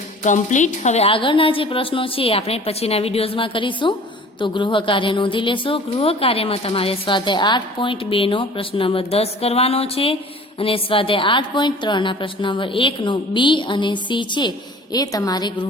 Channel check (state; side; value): normal; both; correlation 0.46